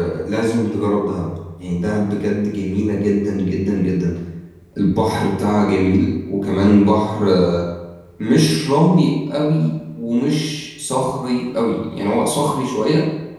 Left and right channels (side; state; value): both; identical; correlation 1.00